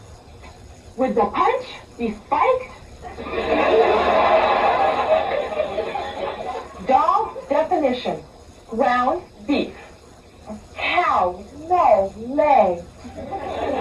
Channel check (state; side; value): identical; both; correlation 1.00